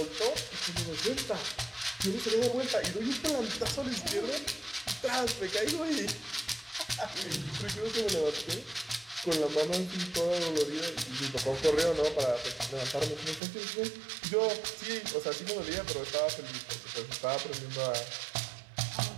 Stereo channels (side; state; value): left; drops out; at 13.4 s